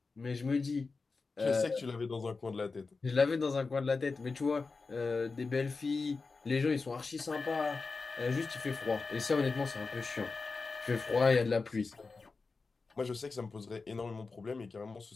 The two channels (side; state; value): right; quieter; 4.2 dB